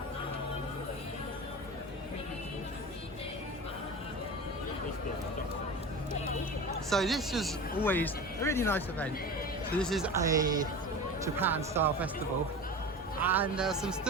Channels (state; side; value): normal; both; correlation 0.32